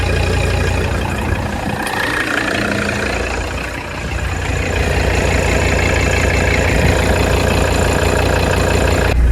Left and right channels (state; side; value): identical; both; correlation 1.00